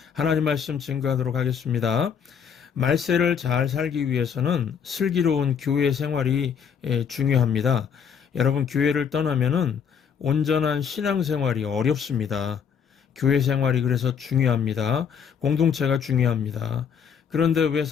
하나님 말씀 증거하도록 하겠습니다. 말세를 잘 살기 위해서는 슬기로운 교회 생활이 중요합니다. 여러분, 교회를 떠나면은 온전한 신앙생활이 어렵습니다. 교회 생활이 그래서 중요합니다. 공동체가 중요합니다. 그런데 왜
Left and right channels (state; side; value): quieter; right; 7.2 dB